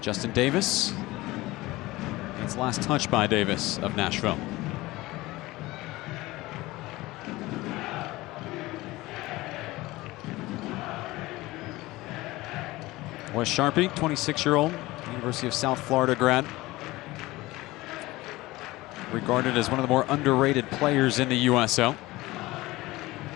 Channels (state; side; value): quieter; right; 19.4 dB